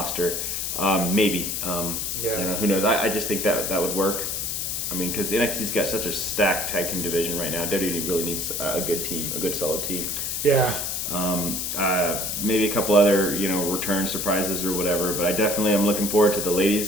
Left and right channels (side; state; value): left; noise; hiss, 2 dB below the sound